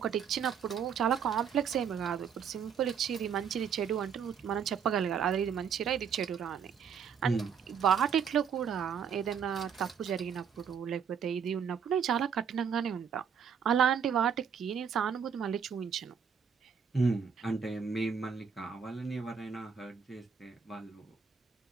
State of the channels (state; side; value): quieter; left; 7.2 dB